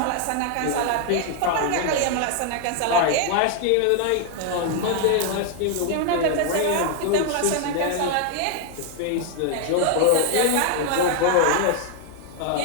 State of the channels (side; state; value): both; different; correlation 0.00